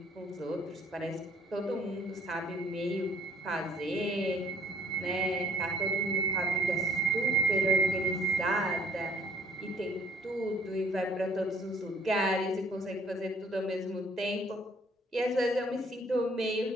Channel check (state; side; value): normal; both; correlation 0.60